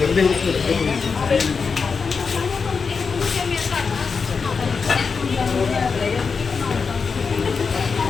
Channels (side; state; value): right; quieter; 5.2 dB